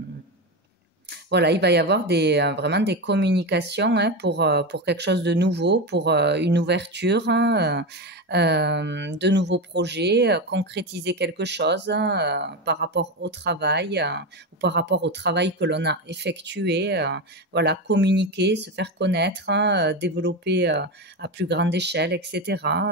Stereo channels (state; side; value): normal; both; correlation 0.17